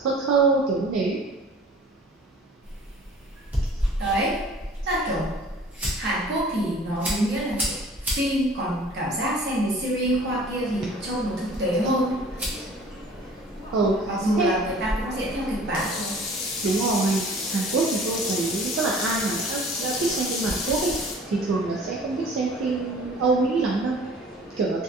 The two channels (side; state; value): both; normal; correlation 0.48